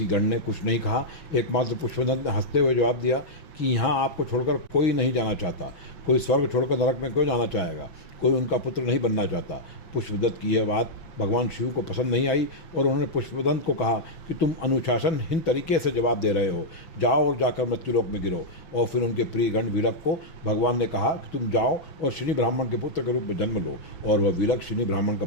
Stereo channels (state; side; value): late; right; 6.1 ms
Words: गण ने कुछ नहीं कहा। एकमात्र पुष्पदंत ने हंसते हुए जवाब दिया कि यहाँ आपको छोड़कर कोई नहीं जाना चाहता, कोई स्वर्ग छोड़कर नरक में क्यों जाना चाहेगा, कोई उनका पुत्र नहीं बनना चाहता। पुष्पदंत की यह बात भगवान शिव को पसंद नहीं आई और उन्होंने पुष्पदंत को कहा कि तुम अनुशासनहीन तरीके से जवाब दे रहे हो, जाओ और जाकर मृत्युलोक में गिरो। और फिर उनके प्रिय गण विलक को भगवान ने कहा कि तुम जाओ और शनि ब्राह्मण के पुत्र के रूप में जन्म लो, और वह विलक शनि ब्राह्मण का